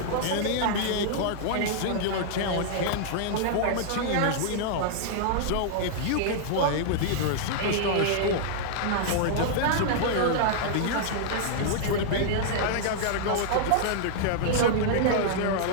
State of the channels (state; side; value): different; both; correlation -0.01